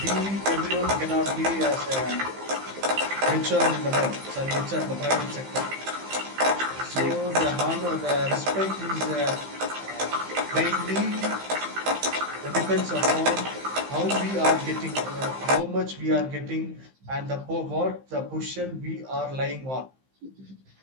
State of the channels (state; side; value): late; left; 15 ms